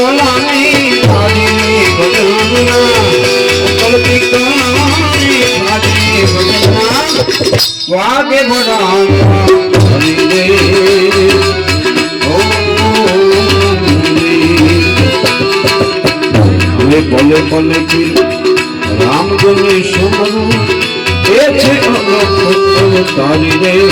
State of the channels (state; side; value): identical; both; correlation 1.00